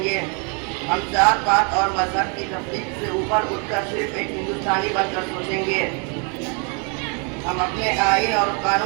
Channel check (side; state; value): left; quieter; 36.1 dB